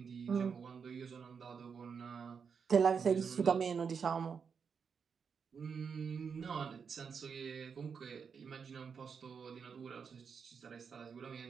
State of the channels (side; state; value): left; quieter; 6.2 dB